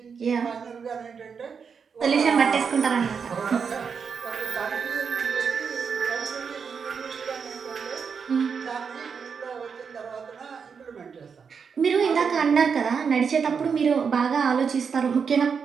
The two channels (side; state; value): left; quieter; 6.2 dB